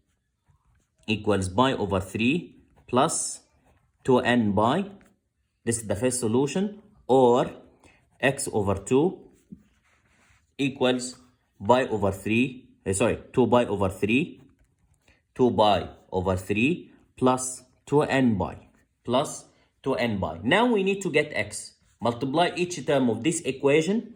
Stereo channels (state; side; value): identical; both; correlation 1.00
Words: equals pi over 3 plus 2n pi. This is the first solution. Or x over 2 equals 2 pi over 3 plus 2n pi. Now we need to get x. Multiply each term of this